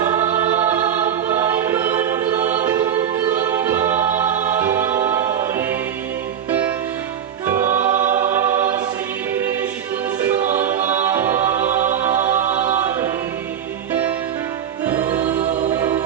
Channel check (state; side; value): quieter; left; 9.1 dB